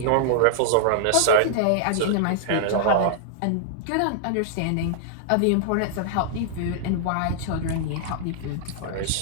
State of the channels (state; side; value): different; both; correlation -0.01